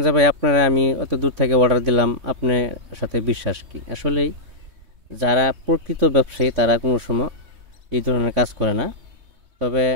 যে ভাই আপনারা আমি অত দূর থেকে অর্ডার দিলাম, আপনার সাথে বিশ্বাস কি? আসলেই যারা প্রকৃত ব্যবসায়ী তারা কোনো সময় এই ধরনের কাজ করে না। তবে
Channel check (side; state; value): left; late; 3.2 ms